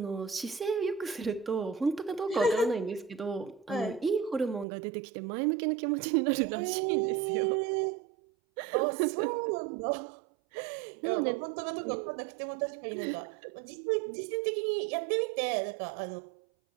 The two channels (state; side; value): drops out; left; at 4.7 s